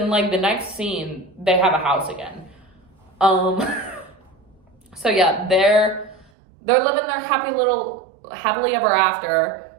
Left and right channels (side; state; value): left; drops out; at 6.3 s